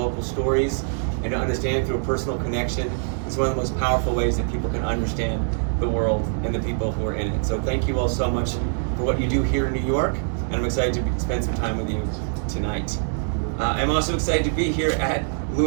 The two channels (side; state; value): left; silent; digital silence